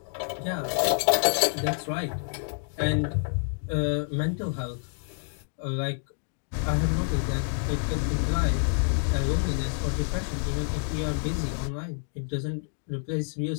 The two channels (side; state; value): right; silent; 57 dB below the other